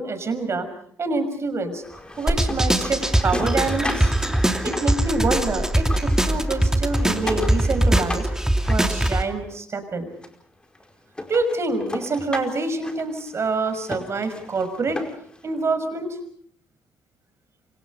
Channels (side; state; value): both; normal; correlation 0.83